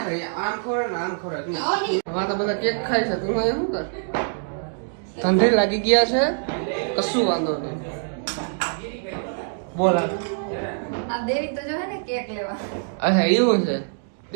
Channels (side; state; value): left; silent; digital silence